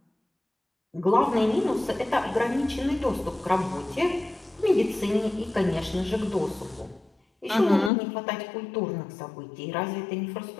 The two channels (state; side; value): drops out; right; at 7.9 s